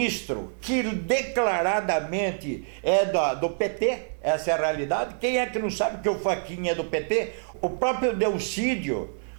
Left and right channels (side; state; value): left; silent; digital silence